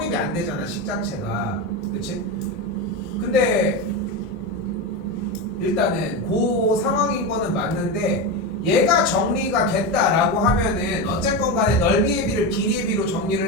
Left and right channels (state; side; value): normal; both; correlation 0.16